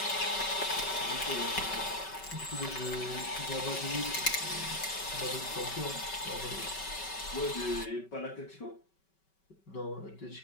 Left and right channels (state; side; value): late; right; 5.2 ms